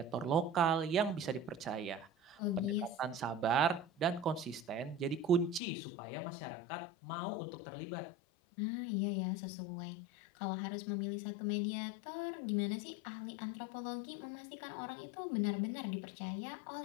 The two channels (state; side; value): drops out; right; at 5.6 s